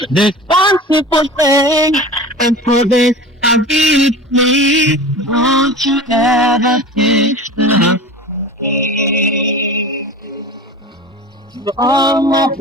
There's one simple thing, and for this I really need. Won't you ever teach me? All my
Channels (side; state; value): both; normal; correlation 0.34